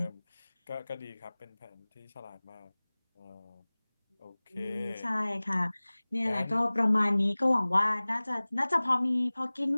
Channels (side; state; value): both; inverted; correlation -1.00